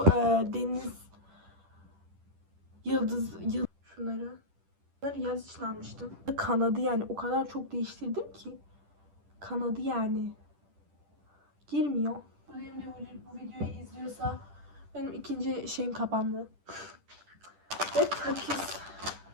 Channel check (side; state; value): left; late; 10 ms